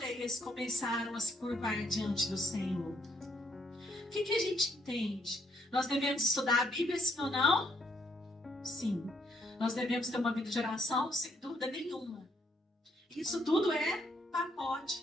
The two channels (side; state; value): both; normal; correlation 0.71